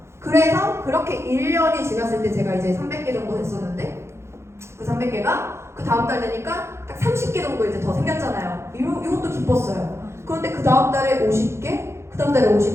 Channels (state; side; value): late; left; 0.13 ms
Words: 그래서 그렇게 1년이 지났을 때 제가 이제 300개 정도 됐었는데, 그 300개가 그 다음 달 되니까 딱 30개 정도 이제 더 생겼잖아요. 이것도 기뻤어요. 그런데 그 다음 달에 50개, 그 다음 달에